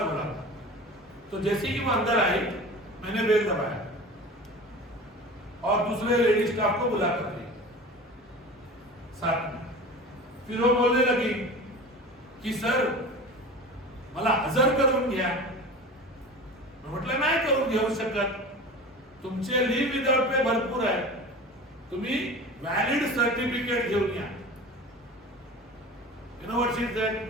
बोला था. तो जैसे ही वो अंदर आई, मैंने बेल दबाया और दूसरे लेडी स्टाफ को बुला कर ली साथ में. फिर वो बोलने लगी की सर मला हजर करून घ्या. म्हटलं नाही करून घेऊ शकत, तुमचे लीव विदाउट पे भरपूर आहे, तुम्ही व्हॅलिड सर्टिफिकेट घेऊन या. You know what she said?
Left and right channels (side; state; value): both; normal; correlation 0.35